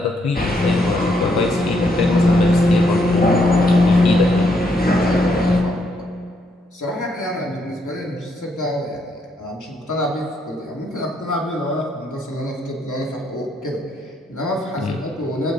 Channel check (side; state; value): both; normal; correlation 0.74